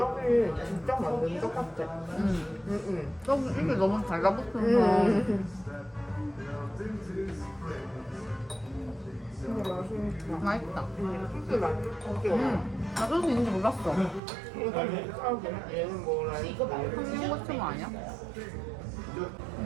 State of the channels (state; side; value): drops out; left; at 14.2 s